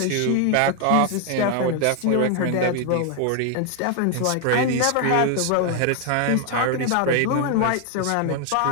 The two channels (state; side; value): different; both; correlation 0.01